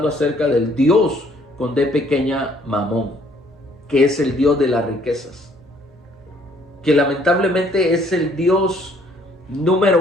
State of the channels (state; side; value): normal; both; correlation 0.63